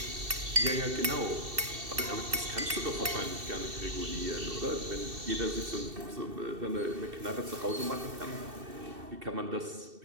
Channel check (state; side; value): late; left; 2.7 ms